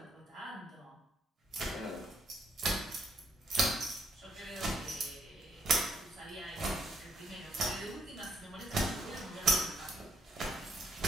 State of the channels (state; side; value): normal; both; correlation 0.73